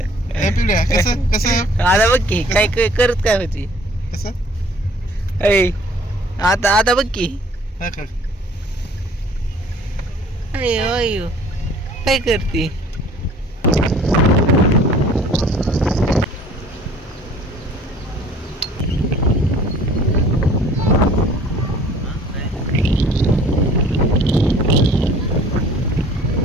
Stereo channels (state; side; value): normal; both; correlation 0.53